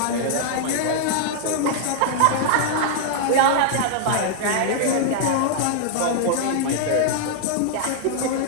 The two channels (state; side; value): different; both; correlation -0.01